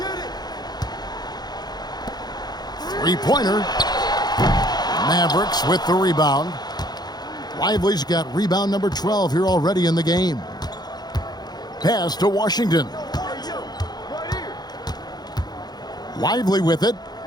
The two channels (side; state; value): right; late; 0.20 ms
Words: Three-pointer. Mavericks with the rebound. Lively's got rebound number 12 here already in the game. Pass to Washington. Lively with it.